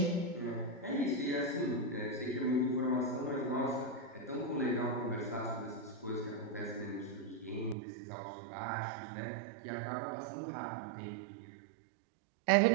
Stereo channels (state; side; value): drops out; left; at 7.8 s